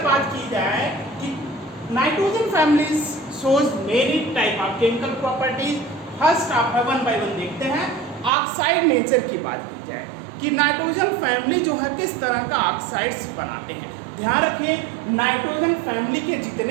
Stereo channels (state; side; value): drops out; left; at 8.3 s